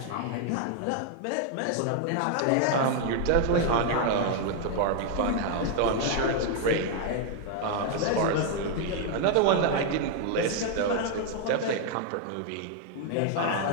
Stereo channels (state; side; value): different; both; correlation 0.00